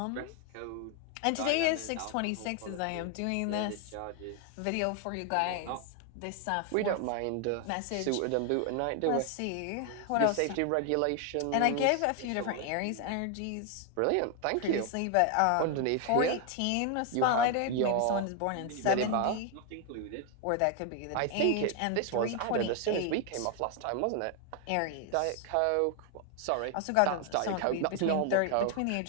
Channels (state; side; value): different; both; correlation 0.00